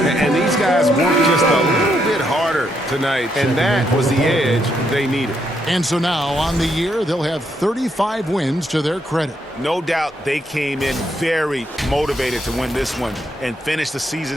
these guys worked just a little bit harder tonight, and that was the edge they needed. And so now, on the year, they'll have 35 wins to their credit. No doubt they came in very motivated to win this one and finish the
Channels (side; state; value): both; normal; correlation 0.76